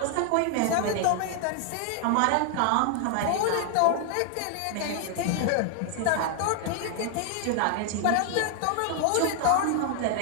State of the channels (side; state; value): both; different; correlation 0.00